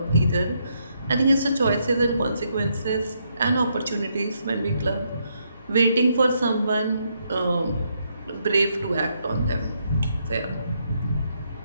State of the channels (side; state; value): both; inverted; correlation -0.77